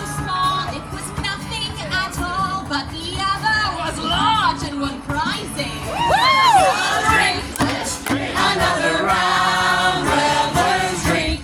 small it was nothing at all, but the other was large and won prizes. Drink Another round, revelers,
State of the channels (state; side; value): identical; both; correlation 1.00